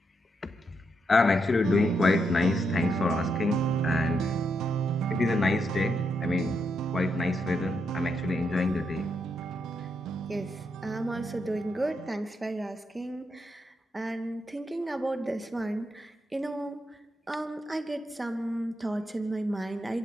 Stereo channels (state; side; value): normal; both; correlation 0.81